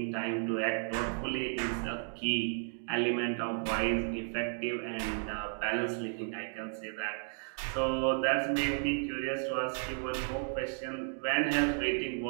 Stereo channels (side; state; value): left; silent; 55 dB below the other